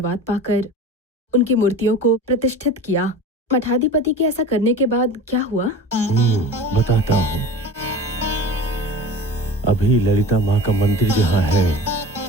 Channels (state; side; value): normal; both; correlation 0.36